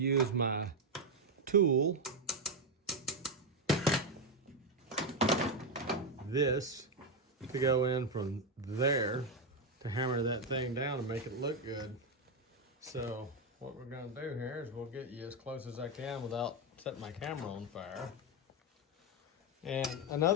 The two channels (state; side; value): normal; both; correlation 0.06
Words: my tool, this, to go in from there to hammer that thing down and make it look good. So what we're going to do here is we'll get you as close as I can without setting my camera on fire. And